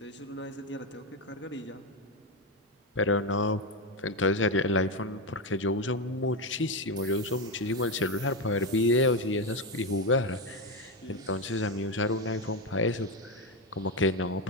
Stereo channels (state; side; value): normal; both; correlation 0.11